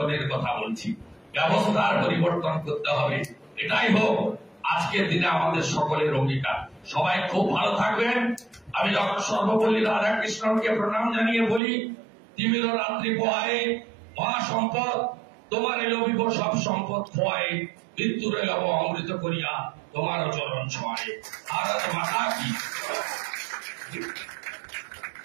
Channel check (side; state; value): left; drops out; at 11.6 s